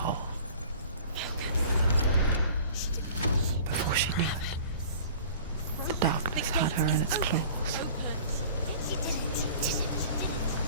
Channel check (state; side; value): inverted; both; correlation -0.45